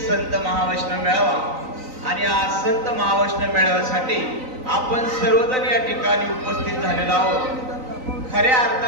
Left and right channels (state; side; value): late; left; 3.9 ms